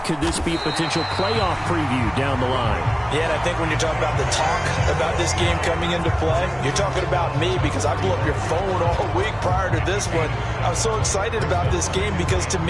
Could this be a potential playoff preview down the line? Yeah, and I think when you're talking about the talk about this game coming into play, you're talking about me because I blew up your phone all week prior to this one. I was so excited about this game because, to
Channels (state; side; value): identical; both; correlation 1.00